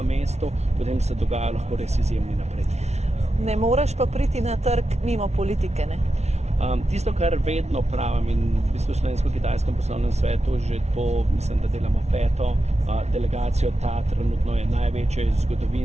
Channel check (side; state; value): left; late; 0.32 ms